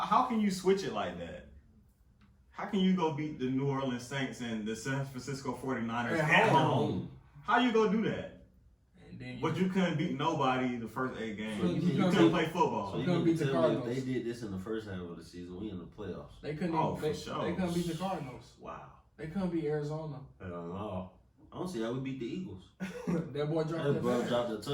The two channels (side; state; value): both; identical; correlation 1.00